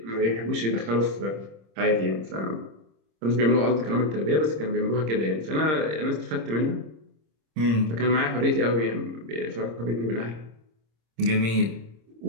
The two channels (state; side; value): late; left; 26 ms